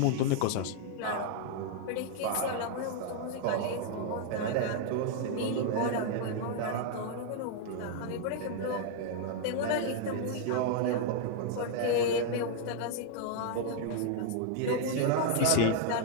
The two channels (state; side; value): different; both; correlation 0.00